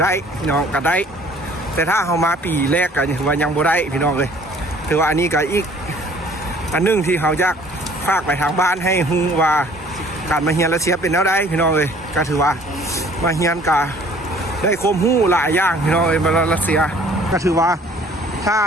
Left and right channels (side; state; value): both; normal; correlation 0.54